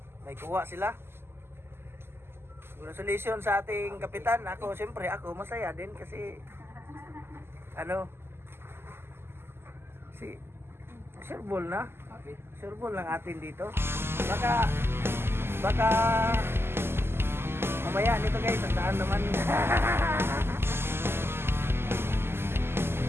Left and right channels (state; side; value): late; left; 0.12 ms